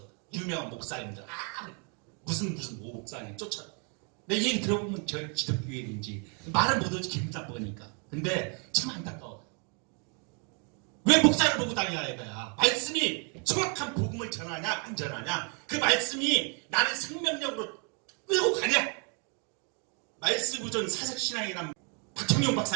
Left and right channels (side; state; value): left; quieter; 37.3 dB